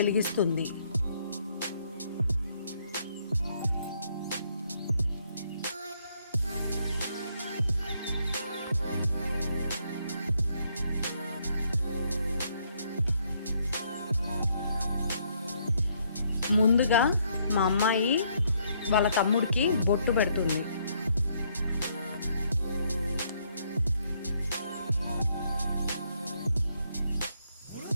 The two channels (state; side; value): inverted; both; correlation -0.71